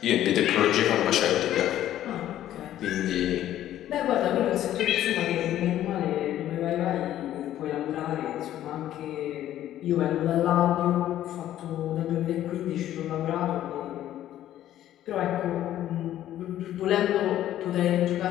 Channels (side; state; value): right; quieter; 12.5 dB